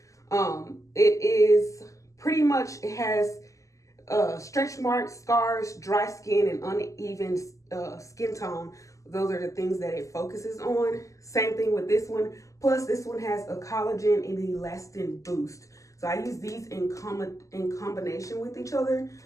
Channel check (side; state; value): right; late; 0.16 ms